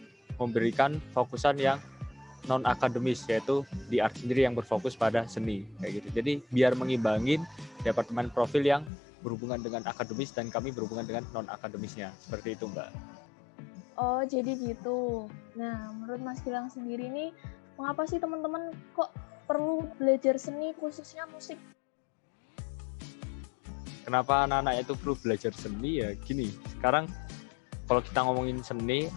memberikan fokusan yang non akademis, yaitu di art sendiri yang berfokus pada seni kayak gitu. Jadi biar mengimbangin Departemen Profil yang berhubungan dengan akademis dan kami berhubungan dengan non akademisnya, seperti itu Mbak. Oh, jadi gitu. Nah, menurut Mas Gilang sendiri nih, mengapa sih teman-teman kok perlu belajar seni, khususnya musik? Kenapa anak-anak itu perlu belajar seni ya? Gini, sekarang kalau kita ngomongin seni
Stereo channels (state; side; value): drops out; right; at 8.9 s